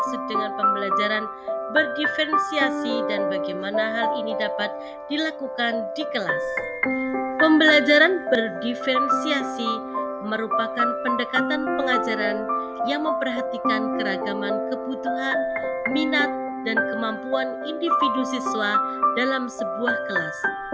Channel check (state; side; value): identical; both; correlation 1.00